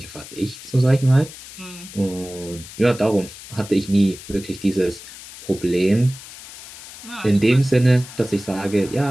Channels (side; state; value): left; noise; hiss, 16 dB below the sound